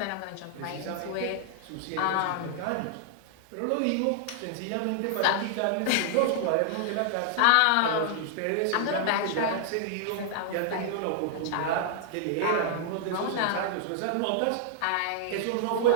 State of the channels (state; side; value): different; both; correlation -0.01